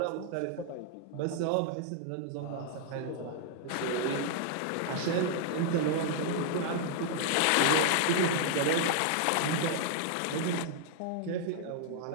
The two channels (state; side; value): different; both; correlation -0.01